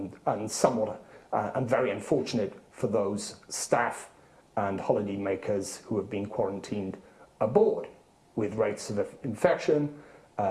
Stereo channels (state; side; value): identical; both; correlation 1.00